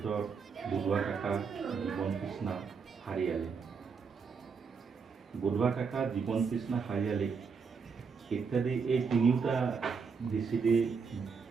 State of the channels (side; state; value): left; quieter; 5.5 dB